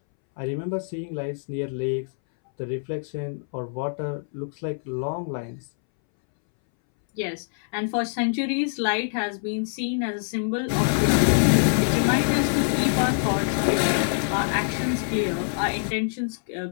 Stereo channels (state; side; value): silent; right; 62 dB below the other